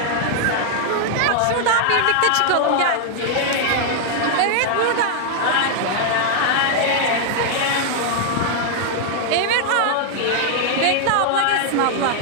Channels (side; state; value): both; different; correlation 0.00